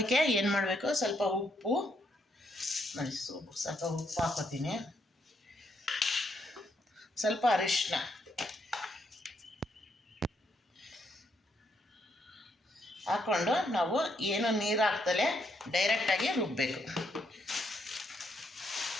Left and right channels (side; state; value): both; normal; correlation 0.76